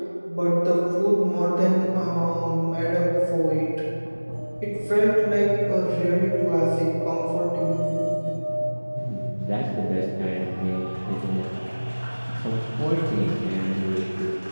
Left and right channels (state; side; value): inverted; both; correlation -1.00